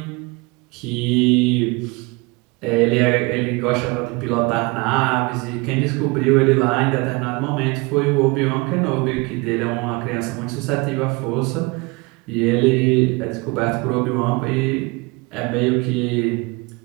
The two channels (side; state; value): left; quieter; 26.0 dB